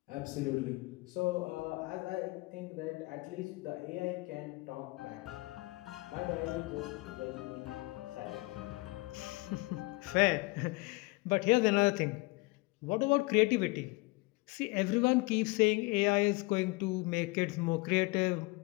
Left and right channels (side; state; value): right; quieter; 24.6 dB